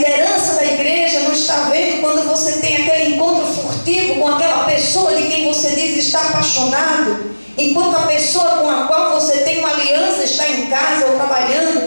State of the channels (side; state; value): both; inverted; correlation -1.00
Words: da igreja não está vendo quando você tem aquele encontro furtivo com aquela pessoa de quem você diz estar apaixonado, enquanto a pessoa com a qual você tem uma aliança está em casa ou